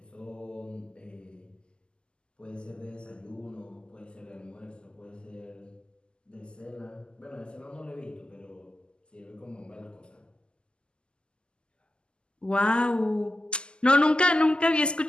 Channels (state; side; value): late; right; 0.049 ms